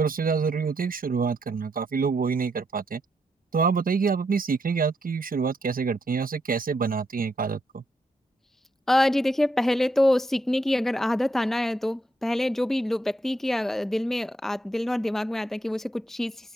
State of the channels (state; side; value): normal; both; correlation 0.78